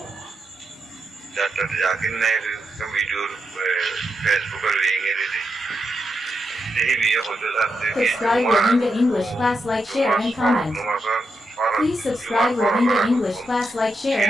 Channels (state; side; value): normal; both; correlation 0.85